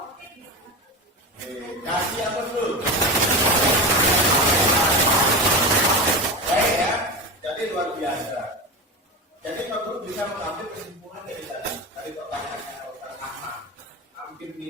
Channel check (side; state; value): both; normal; correlation 0.22